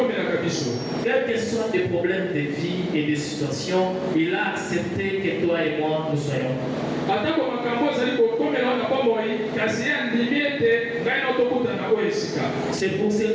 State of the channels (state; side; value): identical; both; correlation 1.00